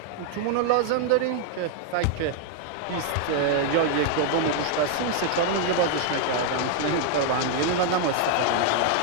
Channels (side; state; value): both; different; correlation 0.00